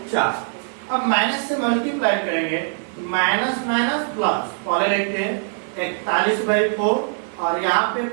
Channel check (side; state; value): left; silent; digital silence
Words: 4। अब माइनस से मल्टीप्लाई करेंगे माइनस माइनस प्लस, पहले देखते हैं 41/4 और यहाँ पे